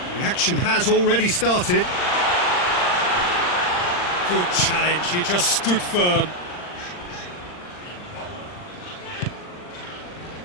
The action has already started. Good challenge, he just stood firm.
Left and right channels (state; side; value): late; right; 39 ms